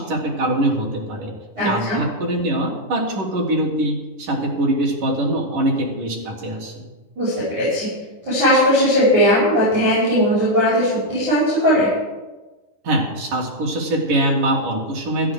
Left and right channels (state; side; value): late; left; 10 ms